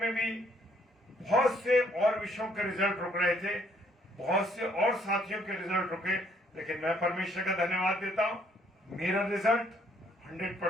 भी बहुत से और विषयों के रिजल्ट रुक रहे थे, बहुत से और साथियों के रिजल्ट रुके, लेकिन मैं परमेश्वर का धन्यवाद देता हूं, मेरा रिजल्ट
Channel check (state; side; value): normal; both; correlation 0.66